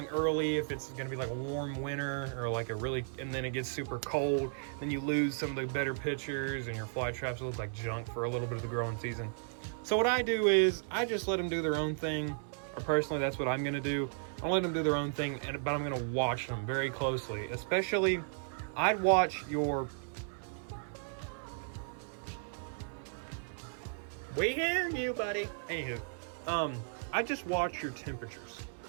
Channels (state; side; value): silent; left; digital silence